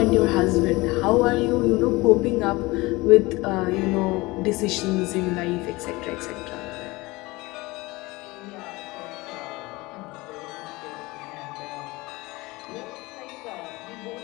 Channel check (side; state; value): right; quieter; 22.0 dB